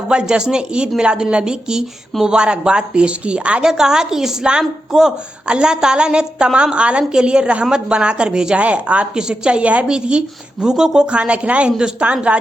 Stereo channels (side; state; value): both; normal; correlation 0.88